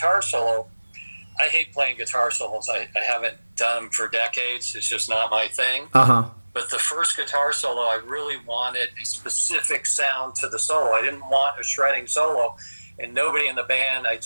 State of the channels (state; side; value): inverted; both; correlation -1.00